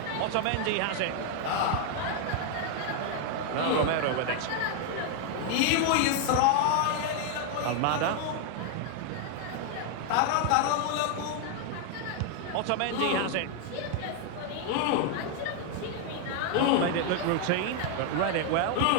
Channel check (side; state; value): both; different; correlation 0.00